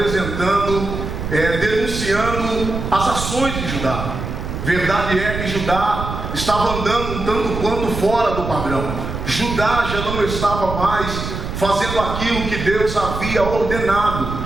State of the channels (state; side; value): noise; right; rumble, 6 dB below the sound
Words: denunciando as ações de Judá. Verdade é que Judá estava andando um tanto quanto fora do padrão. Judá já não estava mais fazendo aquilo que Deus havia ordenado.